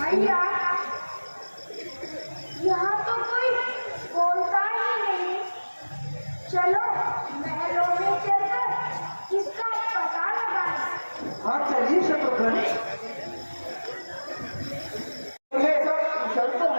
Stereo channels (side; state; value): both; inverted; correlation -1.00